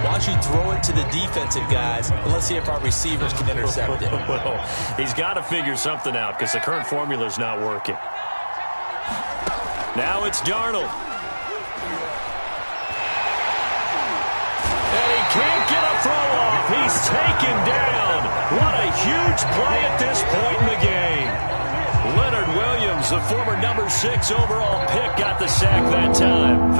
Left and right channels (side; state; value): both; inverted; correlation -1.00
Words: why don't you throw it to the defensive guys, and let's see if our receivers can intercept it. Well, he's got to figure something out because the current formula is not working. Now it's Darnold. And he can't get a throw off. He's taken down. What a huge play at this point in the game. Leonard Williams, the former number 6 overall pick, got the sack that time.